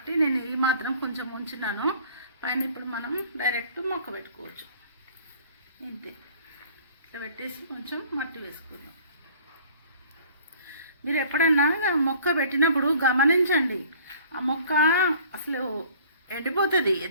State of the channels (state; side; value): inverted; both; correlation -0.52